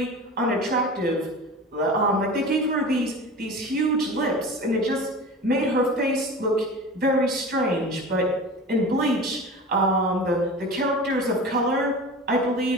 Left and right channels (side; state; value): both; normal; correlation 0.34